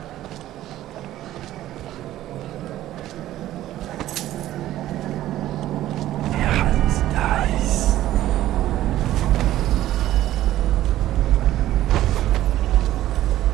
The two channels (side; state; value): left; quieter; 13.9 dB